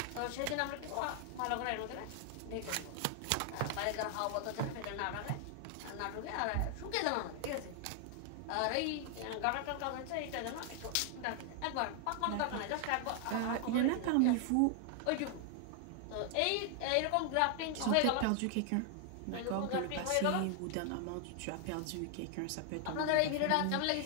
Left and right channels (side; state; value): both; different; correlation 0.00